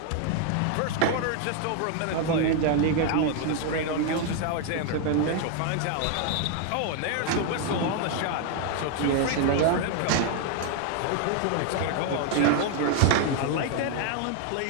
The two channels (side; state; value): both; different; correlation 0.00